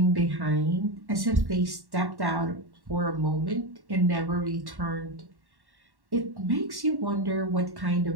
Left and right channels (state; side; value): late; left; 1.1 ms